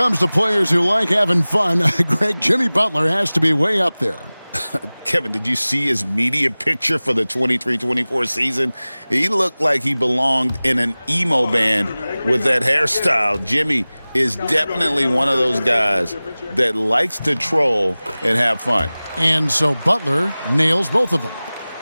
to players who like having fun, Greg, Jimmy Butler has to be way up there. Kevin, did you see his media picture for the 23-24 season? He looked like he belonged in an emo band with that hairstyle. Jimmy is definitely one of those guys that likes to troll and have fun. And so Butler nails both of them.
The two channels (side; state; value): both; inverted; correlation -0.99